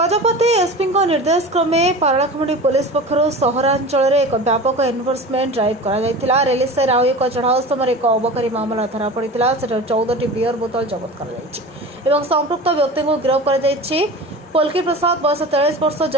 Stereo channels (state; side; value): normal; both; correlation 0.33